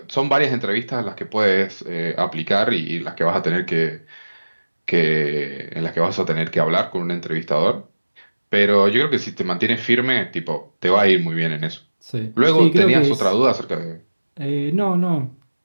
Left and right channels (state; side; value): inverted; both; correlation -1.00